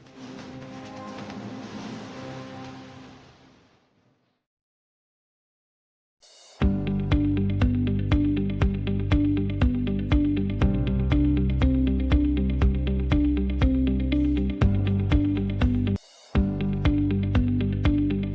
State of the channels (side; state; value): both; identical; correlation 1.00